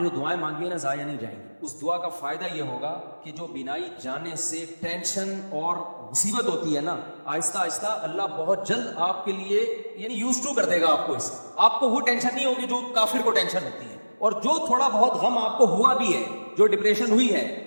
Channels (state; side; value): inverted; both; correlation -1.00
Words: جو دعائیں مانگی ہیں نا ضائع نہیں جائیں گی. اس دعا کا فائدہ یہ ہوگا کہ جو بینائی جانے سے ٹینشن اور مصیبت ہوتی ہے نا، آہستہ آہستہ اللہ بہت جلد آپ کے لیے یعنی یوز ٹو کر دے گا آپ کو. اس آپ کو وہ ٹینشن نہیں ہوگی جو کافر کو ٹینشن ہوتی ہے. اور جو تھوڑا بہت غم آپ کو ہوا بھی ہے، جو ڈپریشن ہوئی ہے،